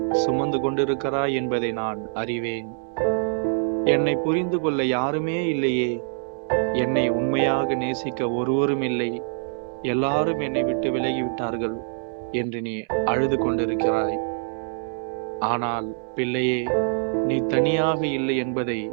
சுமந்து கொண்டிருக்கிறாய் என்பதை நான் அறிவேன். என்னை புரிந்து கொள்ள யாருமே இல்லையே, என்னை உண்மையாக நேசிக்க ஒருவரும் இல்லை, எல்லாரும் என்னை விட்டு விலகிவிட்டார்கள் என்று நீ அழுது கொண்டிருக்கிறாய். ஆனால் பிள்ளையே, நீ தனியாக இல்லை என்பதை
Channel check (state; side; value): silent; left; 62 dB below the other